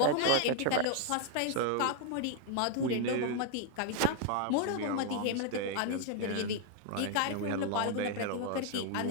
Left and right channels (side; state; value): both; different; correlation 0.00